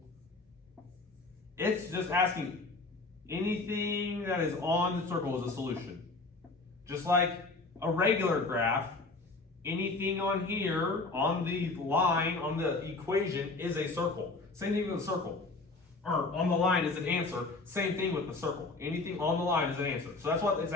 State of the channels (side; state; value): right; quieter; 3.5 dB